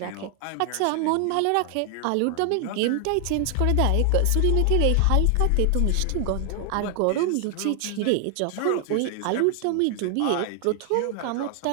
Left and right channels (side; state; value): both; different; correlation 0.00